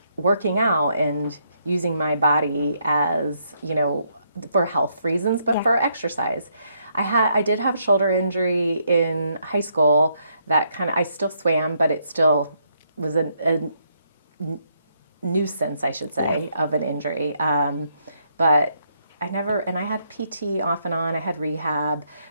working out and using my body as, for health reasons, but for exercise. I did have a shoulder injury in high school that I still swam, but it still was a nuisance, I should say, of an injury. But I had PT off and on, I had rehab,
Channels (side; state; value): both; inverted; correlation -0.74